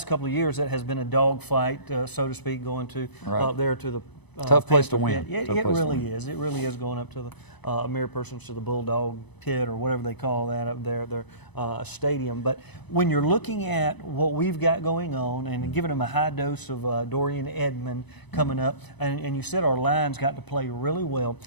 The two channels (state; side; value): late; right; 0.99 ms